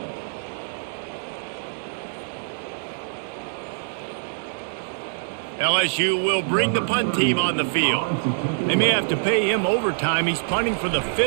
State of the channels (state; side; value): silent; left; 62 dB below the other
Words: LSU will bring the punt team on the field. They may have to pay him overtime. He's punting for the